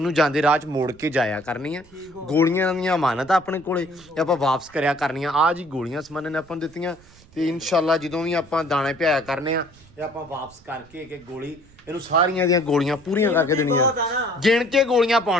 ਜਾਂਦੇ ਰਾਹ ਚ ਮੋੜ ਕੇ ਜਾਇਆ ਕਰਨੀ ਆ। ਗੋਲੀਆਂ ਦੀਆਂ ਅਮਾਨਤ ਆਪਣੇ ਕੋਲੇ, ਇਹ ਆਪਾਂ ਵਾਪਸ ਕਰਿਆ ਕਰਨੀਆਂ। ਆ ਜੀ ਗੋਲੀਆਂ ਸਮਾਨ ਨੇ ਆਪਾਂ ਨੂੰ ਦਿੱਤੀਆਂ, ਤੇ ਇਨਸ਼ਾਅੱਲਾ ਜਦੋਂ ਵੀ ਆਪਾਂ ਦਾਣੇ ਭਿਆਇਆ ਕਰਨੇ ਆ, ਇਹ ਆਪਾਂ ਵਾਪਸ ਕਰਕੇ ਇੱਕ ਗੋਲੀ ਇਹਨੂੰ ਸਾਰੀਆਂ ਦੀਆਂ ਗੋਲੀਆਂ ਪੂਰੀਆਂ ਕਰਕੇ ਦੇਣੀਆਂ, ਗਿਣ ਕੇ ਗੋਲੀਆਂ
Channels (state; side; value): noise; right; rumble, 25 dB below the sound